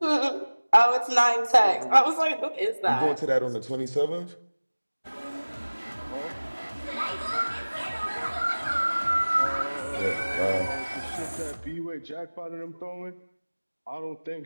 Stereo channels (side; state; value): both; inverted; correlation -1.00